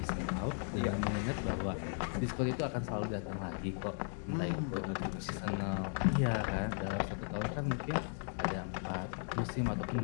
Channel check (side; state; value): right; silent; 53 dB below the other